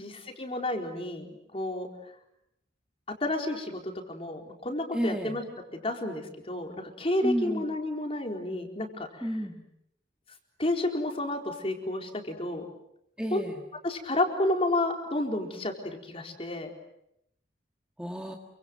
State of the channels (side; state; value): both; normal; correlation 0.50